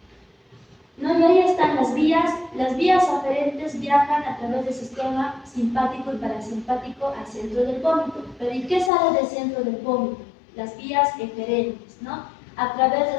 ¿no? Y ahí están las vías. Las vías aferentes viajan a través del sistema simpático y parasimpático al centro del vómito. Pero ¿y qué sale del centro del vómito? Las vías eferentes, ¿no? A través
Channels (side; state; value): right; drops out; at 8.9 s